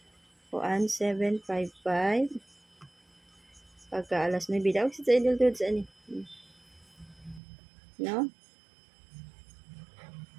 Kuan 755. Pagka alas 9 daw sa idol dudes ani. No?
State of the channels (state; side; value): drops out; left; at 7.4 s